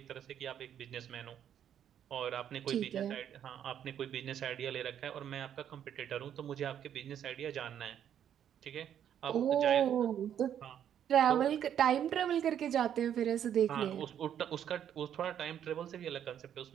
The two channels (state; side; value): quieter; left; 9.6 dB